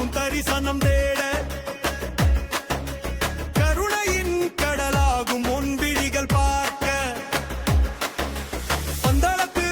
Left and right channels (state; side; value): identical; both; correlation 1.00